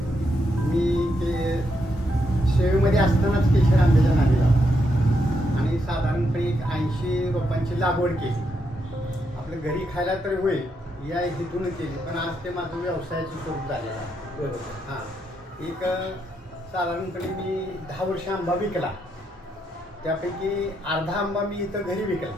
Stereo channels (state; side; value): normal; both; correlation 0.80